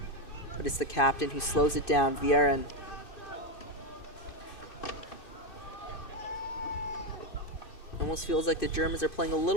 But it's the captain who slows it down, Vieren. Almost feels like the Germans are playing a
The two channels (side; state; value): right; late; 2.5 ms